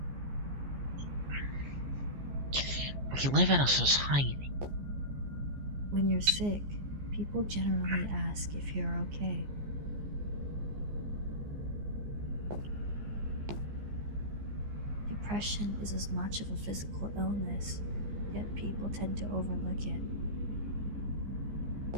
We live in a society. When you're sick, people generally ask if you're okay. Depression is as much of a physical illness, yet people tend to overlook it.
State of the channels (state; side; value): late; left; 14 ms